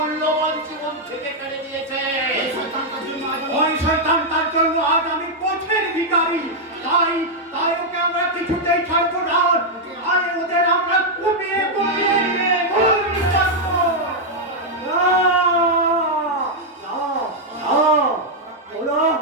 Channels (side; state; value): both; normal; correlation -0.03